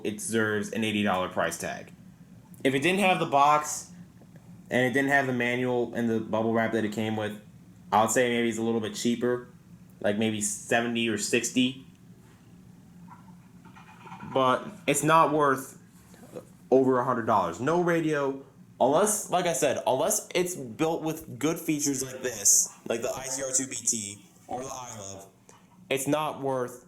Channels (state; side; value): identical; both; correlation 1.00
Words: it deserves an $80 price tag. If it didn't have the box and it didn't have the manual and the bubble wrap that it came with, I would say maybe it's a little bit cheaper, like maybe $70 or $60. But it's not worth over $100. No radio, unless, like I said, unless it's built with good features like this, like the ICR2BT or the iLove, it's not worth